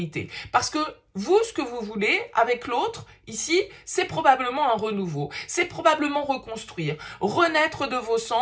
Parce que vous, ce que vous voulez avec l'autre, ici, c'est probablement un renouveau. C'est probablement reconstruire, renaître de vos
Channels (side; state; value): both; identical; correlation 1.00